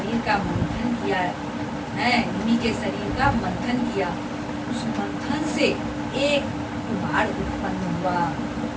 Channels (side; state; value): both; identical; correlation 1.00